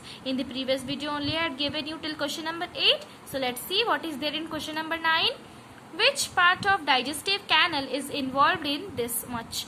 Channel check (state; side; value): identical; both; correlation 1.00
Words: In the previous video only I had given you till question number 8. So let's see what is there in question number 9. Which part of digestive canal is involved in this much?